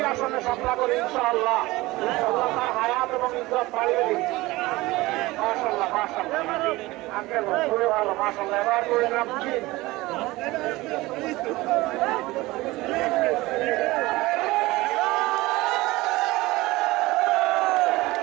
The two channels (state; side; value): quieter; left; 20.0 dB